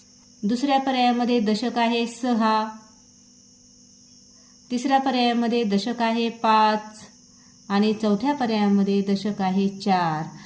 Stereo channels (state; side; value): identical; both; correlation 1.00